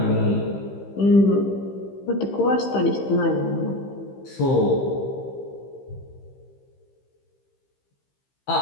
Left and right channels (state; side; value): late; right; 15 ms